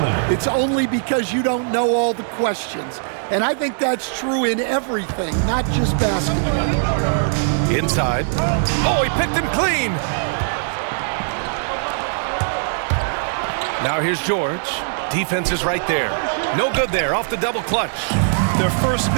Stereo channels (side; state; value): left; silent; digital silence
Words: it's only because you don't know all the questions. And I think that's true in everything, not just basketball. Inside. Oh, he picked him clean. Now here's George. Defense is right there. No good there, off the double clutch. Their first